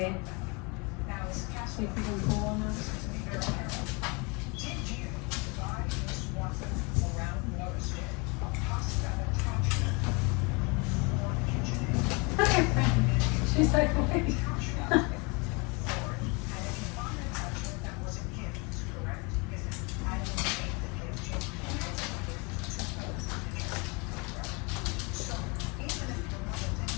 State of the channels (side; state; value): right; quieter; 29.9 dB